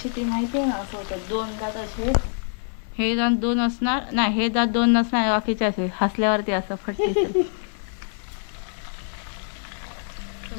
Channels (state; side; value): silent; right; 62 dB below the other